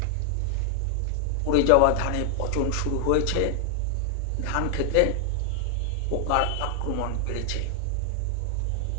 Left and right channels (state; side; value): different; both; correlation 0.00